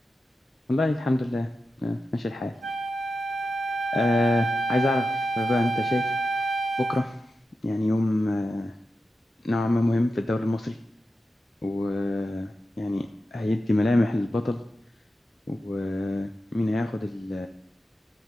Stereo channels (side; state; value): both; normal; correlation 0.91